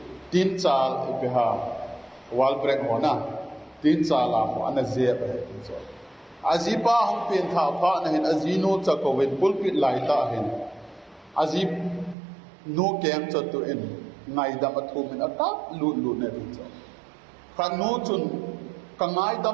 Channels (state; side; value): drops out; left; at 12.2 s